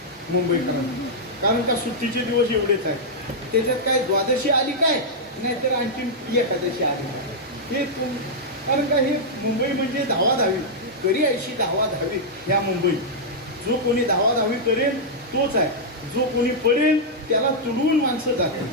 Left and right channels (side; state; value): both; normal; correlation -0.07